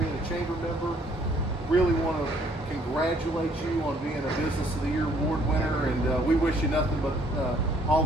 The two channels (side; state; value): both; normal; correlation 0.63